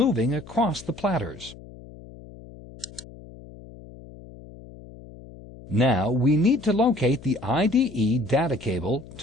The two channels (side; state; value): left; noise; hum, 18 dB below the sound